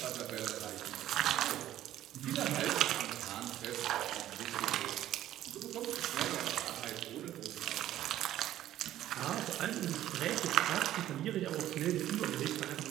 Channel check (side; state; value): left; quieter; 12.9 dB